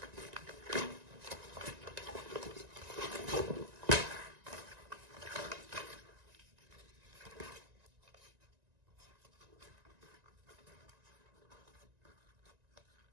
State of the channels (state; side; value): late; left; 1.9 ms